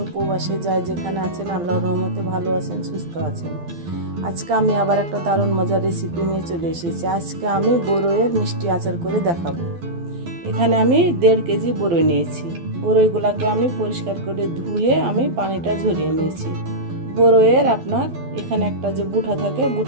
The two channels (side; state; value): left; late; 12 ms